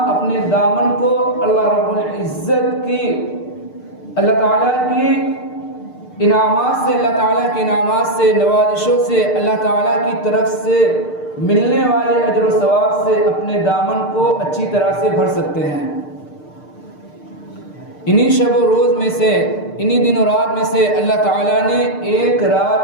اپنے دامن کو اللہ رب العزت کی، اللہ تعالیٰ کی انعامات سے، اللہ تعالیٰ کے انعامات سے، نوازشوں سے، اللہ تعالیٰ کی طرف سے ملنے والے اجر و ثواب سے اپنے دامن کو اچھی طرح سے بھر سکتے ہیں. انہی شب و روز میں سے، انہی دن و رات میں سے اللہ تعالیٰ نے ایک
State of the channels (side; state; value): right; late; 6.6 ms